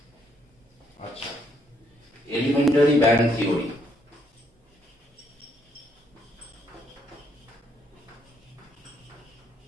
আচ্ছা, এলিমেন্টারি ব্যান্ড থিওরি।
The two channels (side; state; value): both; normal; correlation 0.72